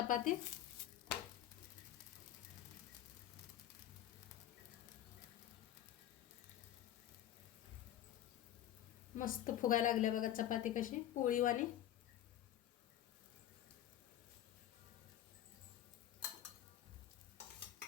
मस्त फुगायला लागल्या बघा चपाती कशी पोळीवाणी.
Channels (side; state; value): right; quieter; 12.0 dB